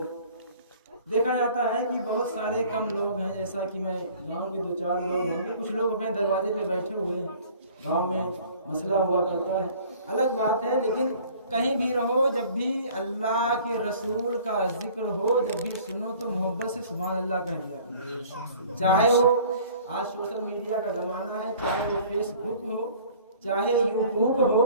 دیکھا جاتا ہے کہ بہت سارے کم لوگ ہیں، جیسا کہ میں گاؤں کے 2-4 لوگ ہوں گے، کچھ لوگ اپنے دروازے پہ بیٹھے ہوئے ہیں، گاؤں میں مسئلہ ہوا کرتا ہے، الگ بات ہے. لیکن کہیں بھی رہو، جب بھی اللہ کے رسول کا ذکر ہو، جب بھی سنو تو محبت سے سبحان اللہ کہہ دیا. چاہے وہ آج سوشل میڈیا کا زمانہ ہے، چاہے وہ فیس بک ہو، چاہے یوٹیوب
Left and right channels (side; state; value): both; inverted; correlation -0.51